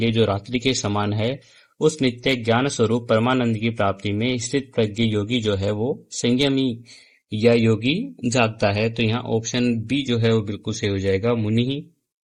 जो रात्रि के समान है उस नित्य ज्ञान स्वरूप परमानंद की प्राप्ति में स्थित प्रज्ञ योगी जो है वो संयमी या योगी जागता है। तो यहाँ ऑप्शन बी जो है वो बिल्कुल सही हो जाएगा, मुनि ही।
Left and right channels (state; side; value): identical; both; correlation 1.00